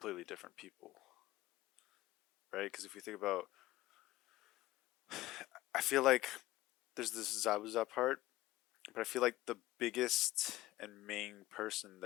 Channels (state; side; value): quieter; right; 17.1 dB